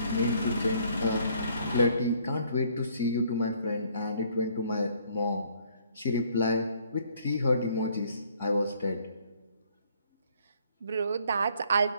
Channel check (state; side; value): inverted; both; correlation -0.63